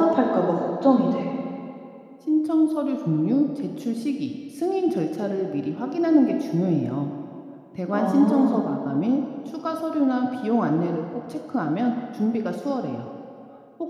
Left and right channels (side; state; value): both; identical; correlation 1.00